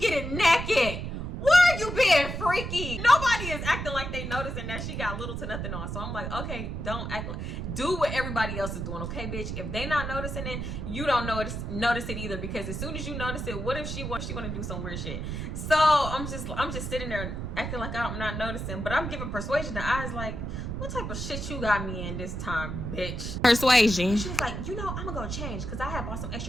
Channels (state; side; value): noise; right; rumble, 4 dB below the sound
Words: naked? Where are you being freaky. Nobody is acting like they noticing that she got little to nothing on. So I'm like, okay, don't act like, do what everybody else is doing, okay, bitch? If they not noticing it, you don't notice it either, because as soon as you notice it, what if she want to do some weird shit? So I'm just sitting there acting like I'm not noticing, but I'm giving Persuasion the eyes like, what type of shit you got me in this time, bitch? Persuasion. She was like, I'm gonna go change because I had bought some